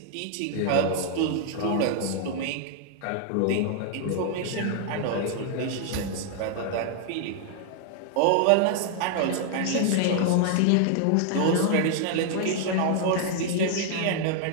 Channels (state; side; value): different; both; correlation 0.00